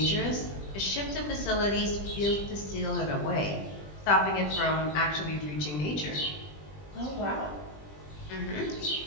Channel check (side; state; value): right; late; 20 ms